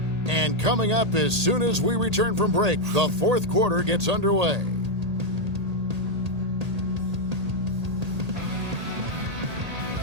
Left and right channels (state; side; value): late; left; 1.8 ms